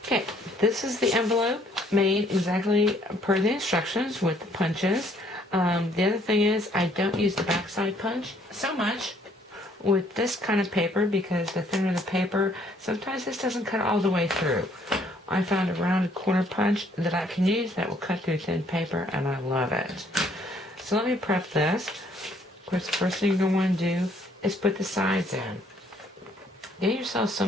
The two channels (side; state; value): both; normal; correlation 0.64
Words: Okay, this is the envelope made exactly per the instructions with the punches. The other thing is I don't use the backside punch so much with this kind of paper, because the thinner the paper, sometimes this doesn't cut all the way through. I found a rounded corner punch that I can use that will cut through thin paper, and I love it. So let me prep this. Of course, the first thing you're going to want to do is put the sides in. Get yourself